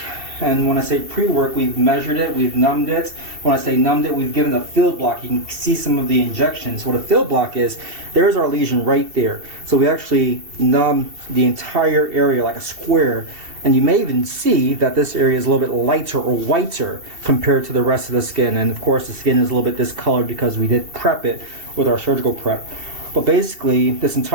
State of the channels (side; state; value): left; late; 2.7 ms